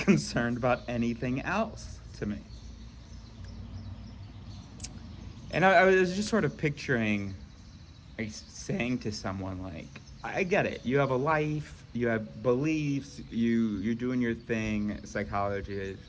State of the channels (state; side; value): identical; both; correlation 1.00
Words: about anything else to me. And I was just sort of picturing saying to someone like, I get it, you have a life, you have beliefs, you're doing your thing, psychology is